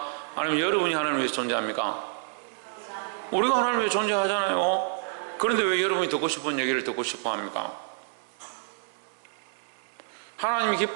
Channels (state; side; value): silent; left; 59 dB below the other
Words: 아니면 여러분이 하나님을 위해서 존재합니까? 우리가 하나님을 위해 존재하잖아요. 그런데 왜 여러분이 듣고 싶은 얘기를 듣고 싶어 합니까? 하나님이